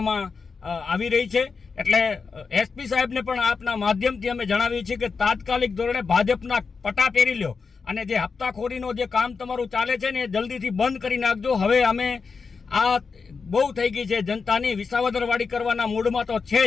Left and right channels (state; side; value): quieter; right; 5.1 dB